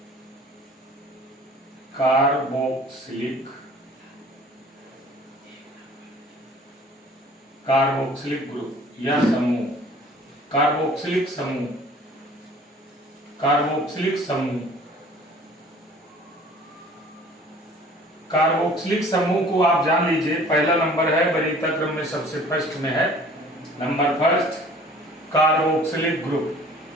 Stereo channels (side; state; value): both; normal; correlation 0.50